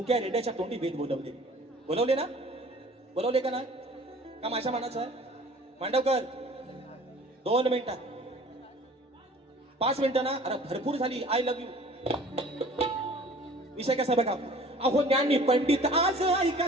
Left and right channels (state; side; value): normal; both; correlation 0.48